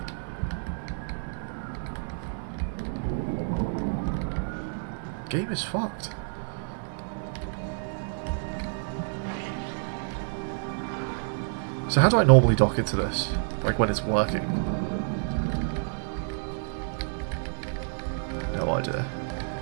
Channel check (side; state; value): left; silent; digital silence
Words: Game is fucked. So how do I normally dock into this? Like when it's working? No idea.